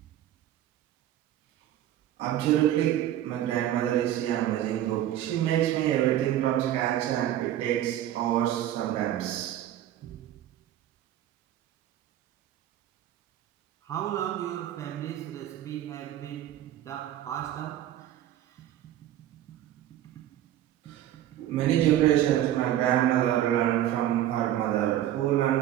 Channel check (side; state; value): left; quieter; 12.3 dB